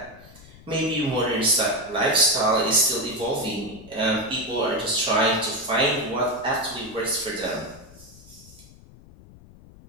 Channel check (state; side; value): noise; left; rumble, 22 dB below the sound